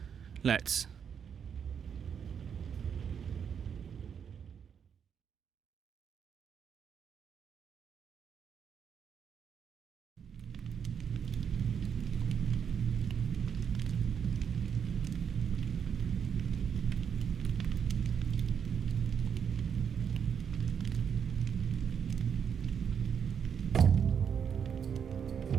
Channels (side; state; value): left; quieter; 7.4 dB